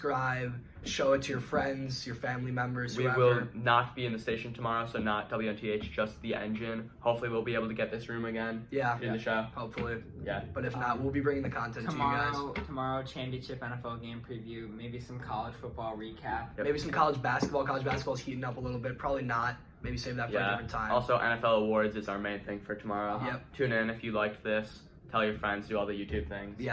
Show it to your friends, your family members, We whoever. will not be in the station tomorrow, so not WNTH, just the engine. Hopefully, we'll be able to get this room again. Yeah, In the show. hopefully. Yeah. But if not, we'll be bringing the content to you guys. Tomorrow, championship NFL game preview, maybe some college football recap. Yep. Maybe some college basketball. College basketball's heating up a little bit. Probably not. Maybe save that for a Yeah. different time. Also, NFL awards is our main thing for tomorrow. Yep. Tune in if you liked this. Tell your friends. Do all the YouTube things.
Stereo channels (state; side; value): identical; both; correlation 1.00